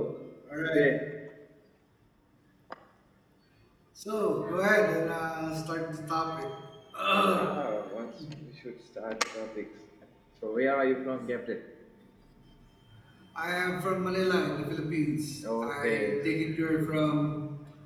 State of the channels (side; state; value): both; identical; correlation 1.00